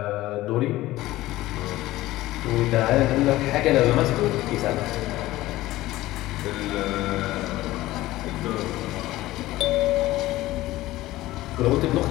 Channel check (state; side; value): quieter; right; 16.9 dB